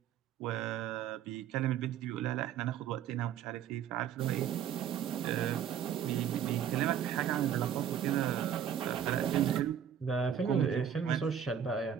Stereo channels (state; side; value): quieter; left; 9.1 dB